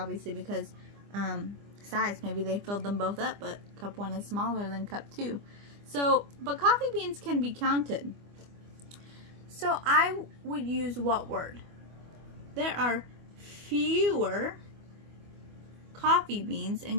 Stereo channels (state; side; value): late; left; 25 ms